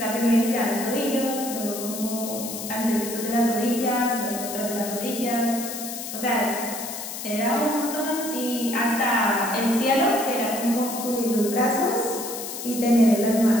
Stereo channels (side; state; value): left; noise; hiss, 8 dB below the sound